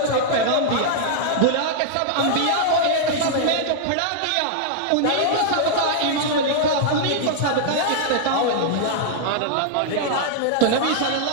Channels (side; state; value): both; different; correlation -0.01